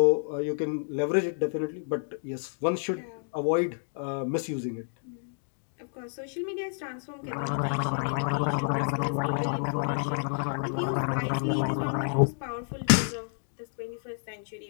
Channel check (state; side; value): silent; right; digital silence